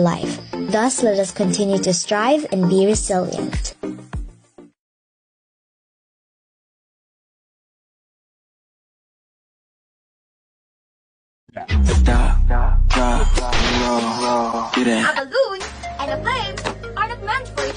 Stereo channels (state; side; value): identical; both; correlation 1.00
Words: Thus, let us continue to strive and be resilient. A balloon and a flame are not meant for